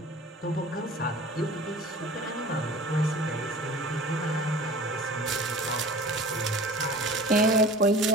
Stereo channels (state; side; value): normal; both; correlation 0.41